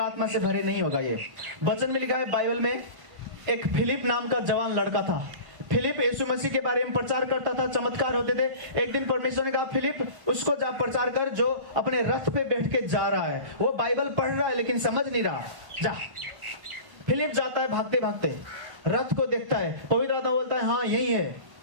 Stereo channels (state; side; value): late; left; 1.1 ms